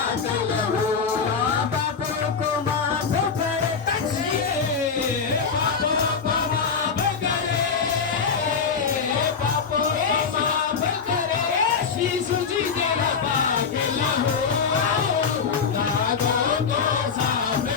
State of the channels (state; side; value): quieter; right; 5.9 dB